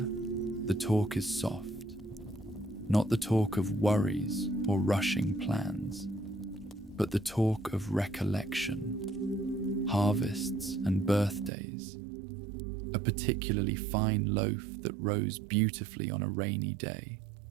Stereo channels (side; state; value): left; drops out; at 11.5 s